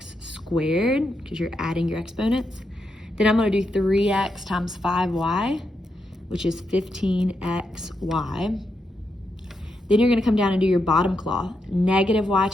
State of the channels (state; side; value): normal; both; correlation 0.83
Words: squared, because you're adding your exponents. Then I'm gonna do 3x times 5y, which is 15xy. Then you're gonna come down and do your bottom claw. Negative y